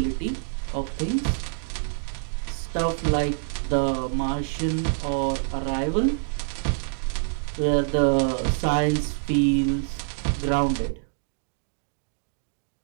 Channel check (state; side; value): silent; left; digital silence